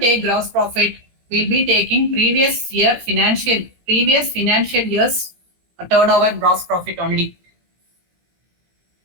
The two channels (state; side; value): late; left; 17 ms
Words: gross profit, we'll be taking previous financial year's turnover gross profit only.